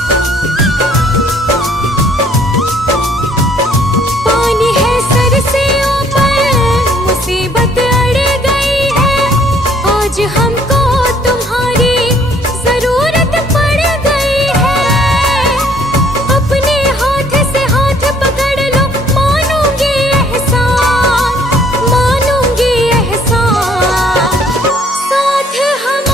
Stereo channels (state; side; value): normal; both; correlation 0.61